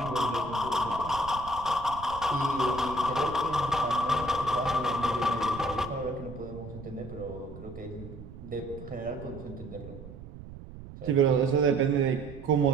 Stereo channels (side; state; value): right; noise; rumble, 14 dB below the sound